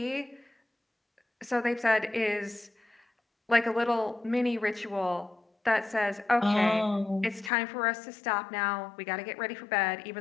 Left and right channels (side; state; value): right; drops out; at 7.5 s